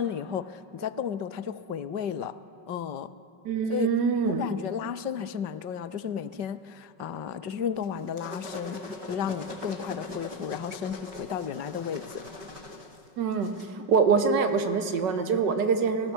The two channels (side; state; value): left; late; 5.4 ms